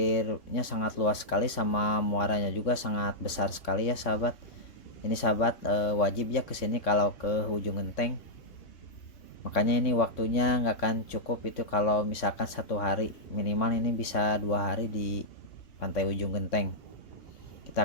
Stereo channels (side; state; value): right; late; 3.6 ms